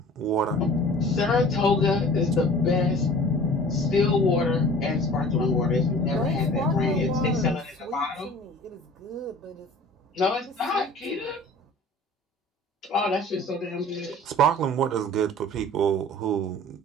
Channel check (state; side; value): normal; both; correlation 0.45